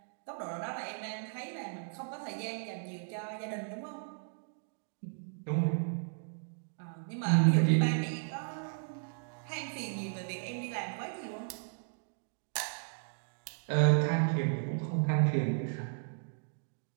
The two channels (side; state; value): left; silent; digital silence